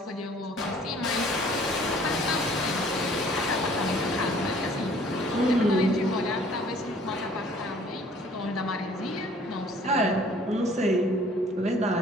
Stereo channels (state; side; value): normal; both; correlation 0.55